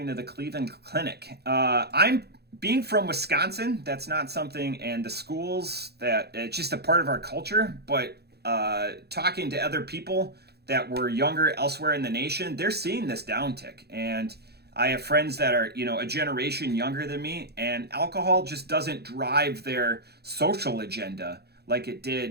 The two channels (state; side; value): late; left; 0.47 ms